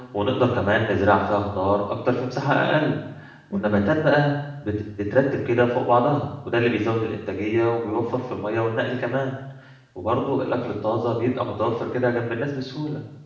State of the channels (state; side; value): identical; both; correlation 1.00